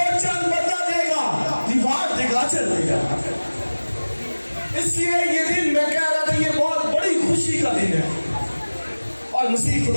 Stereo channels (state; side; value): inverted; both; correlation -1.00